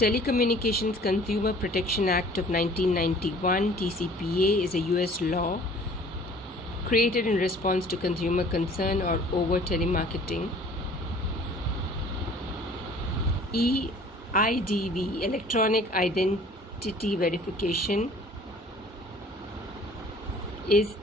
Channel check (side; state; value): both; normal; correlation 0.51